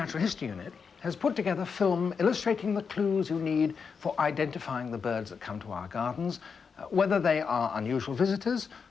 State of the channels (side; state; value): right; quieter; 5.8 dB